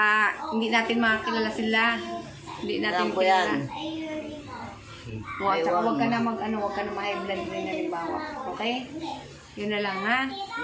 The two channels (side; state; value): both; identical; correlation 1.00